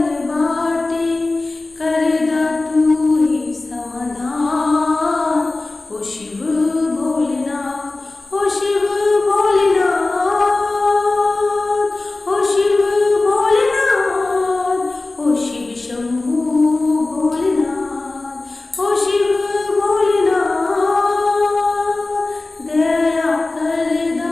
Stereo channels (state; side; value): quieter; right; 3.2 dB